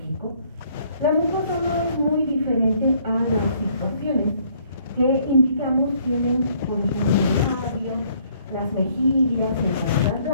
la mucosa no es muy diferente a las situaciones que indicamos tienen por ejemplo el labio, las mejillas y la garganta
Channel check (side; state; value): both; inverted; correlation -0.64